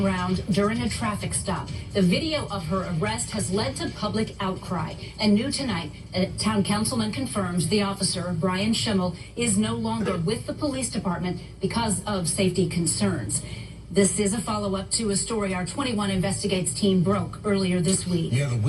during a traffic stop. The video of her arrest has led to public outcry. And new tonight, a town councilman confirms the officer, Brian Schimmel, is no longer with the police department because of safety concerns. This is a follow-up to a story our 21 Investigates team broke earlier this week. Yeah, the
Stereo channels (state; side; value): identical; both; correlation 1.00